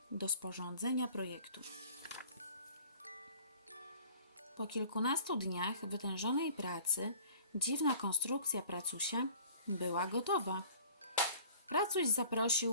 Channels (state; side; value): inverted; both; correlation -0.49